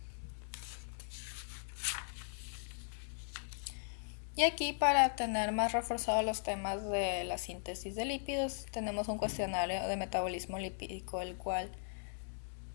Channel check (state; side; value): silent; right; digital silence